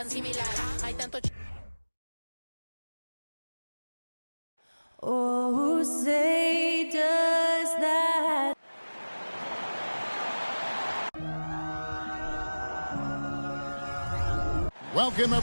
similar, hay tanto Oh, say does that. Welcome,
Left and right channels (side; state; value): both; inverted; correlation -1.00